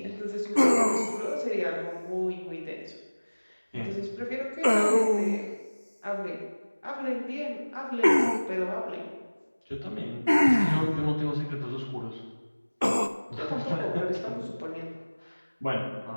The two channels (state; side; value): inverted; both; correlation -1.00